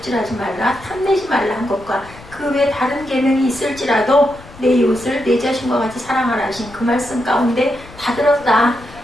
말라, 탐내지 말라 한 것과 그 외에 다른 계명이 있을지라도 내 이웃을 내 자신과 같이 사랑하라 하신 그 말씀 가운데 다 들었다.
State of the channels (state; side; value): noise; left; rumble, 20 dB below the sound